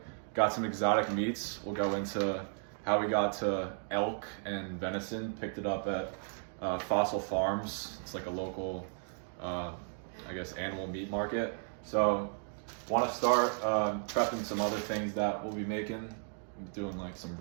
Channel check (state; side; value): silent; left; 55 dB below the other